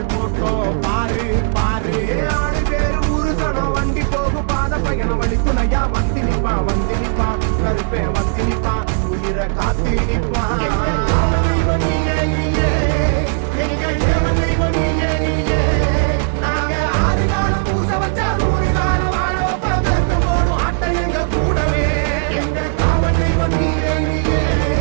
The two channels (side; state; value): left; silent; digital silence